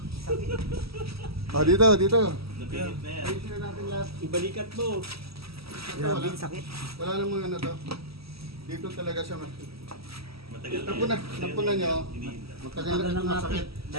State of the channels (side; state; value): left; late; 0.76 ms